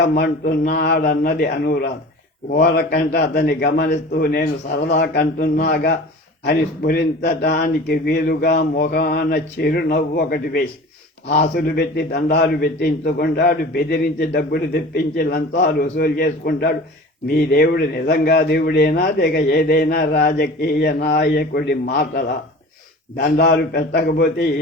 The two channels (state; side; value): normal; both; correlation 0.39